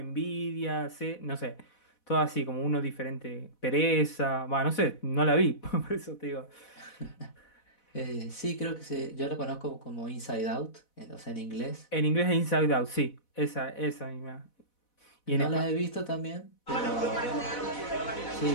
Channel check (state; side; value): late; right; 4.1 ms